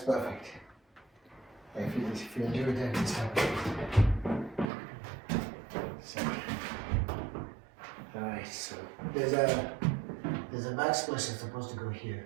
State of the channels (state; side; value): drops out; left; at 4.7 s